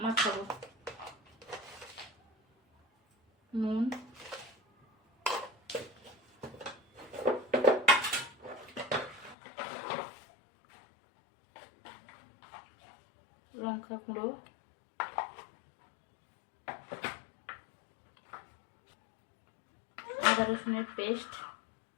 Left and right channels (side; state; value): right; drops out; at 9.3 s